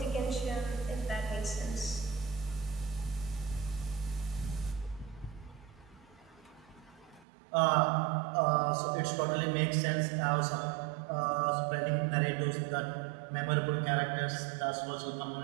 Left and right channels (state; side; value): drops out; left; at 7.2 s